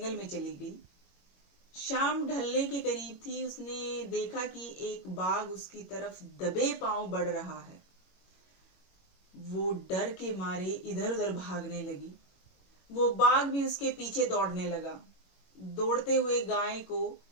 में चली गई। शाम ढलने के करीब थी। उसने देखा कि एक बाघ उसकी तरफ दबे पांव बढ़ रहा है। वो डर के मारे इधर उधर भागने लगी। वो बाघ भी उसके पीछे दौड़ने लगा। दौड़ते हुए गाय को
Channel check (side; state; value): right; late; 21 ms